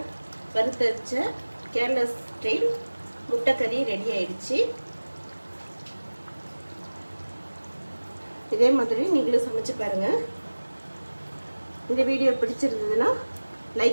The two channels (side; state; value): both; inverted; correlation -1.00